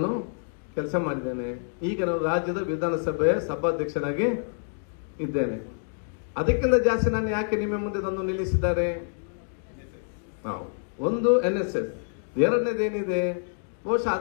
ಕೆಲಸ ಮಾಡಿದ್ದೇನೆ. ಈಗ ನಾನು ರಾಜ್ಯದ ವಿಧಾನಸಭೆಯ ಸಭಾಧ್ಯಕ್ಷನಾಗಿ ಇದ್ದೇನೆ. ಅದಕ್ಕಿಂತ ಜಾಸ್ತಿ ನಾನು ಯಾಕೆ ನಿಮ್ಮ ಮುಂದೆ ತಂದು ನಿಲ್ಲಿಸಿದ್ದಾರೆ? ಒಂದು NSS, ಎರಡನೇದೇನಿದೆ, ಬಹುಶಃ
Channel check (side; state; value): right; silent; digital silence